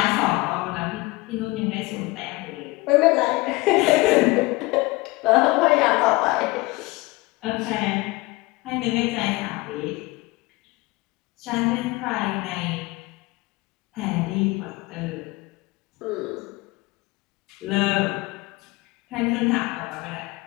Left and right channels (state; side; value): quieter; right; 22.6 dB